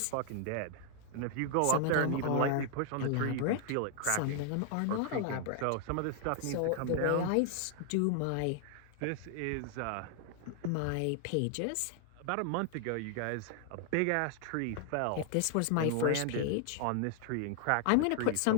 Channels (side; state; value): both; different; correlation 0.00